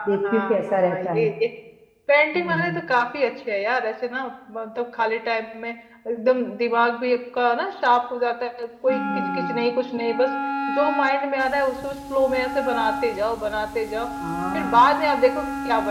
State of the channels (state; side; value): identical; both; correlation 1.00